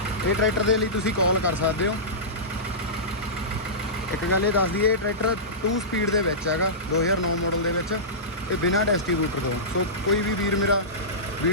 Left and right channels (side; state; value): both; normal; correlation -0.18